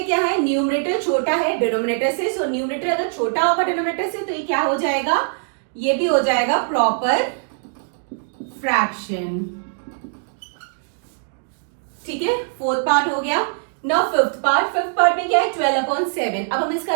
क्या है? न्यूमरेटर छोटा है डिनोमिनेटर से, सो न्यूमरेटर अगर छोटा होगा डिनोमिनेटर से तो ये क्या हो जाएगा? ये भी हो जाएगा प्रॉपर फ्रैक्शन. ठीक है, फोर्थ पार्ट हो गया. नाउ फिफ्थ पार्ट में क्या है? 12/7. अब हम इसका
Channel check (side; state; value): left; silent; digital silence